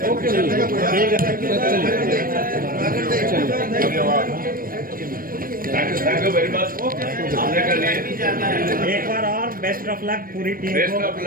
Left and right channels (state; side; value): late; left; 0.41 ms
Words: Thank you very much. हमने कर लिए। एक बार और बेस्ट ऑफ लक पूरी टीम बेस्ट को। Of